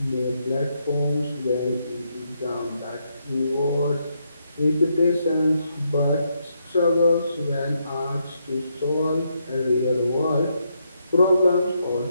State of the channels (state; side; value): inverted; both; correlation -0.78